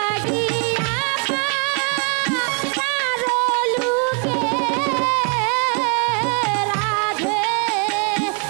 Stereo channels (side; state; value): left; quieter; 39.5 dB